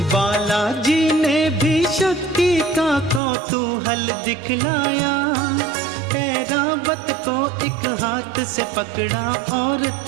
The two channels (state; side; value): drops out; left; at 3.2 s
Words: बालाजी ने भी शक्ति का कौतूहल दिखलाया। ऐरावत को एक हाथ से पकड़ा और